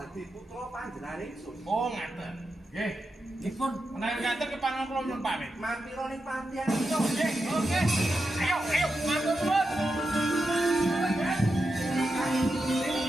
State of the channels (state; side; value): normal; both; correlation 0.88